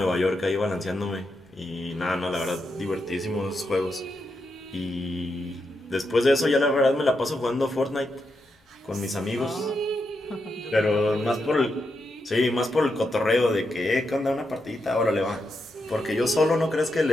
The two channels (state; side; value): normal; both; correlation 0.84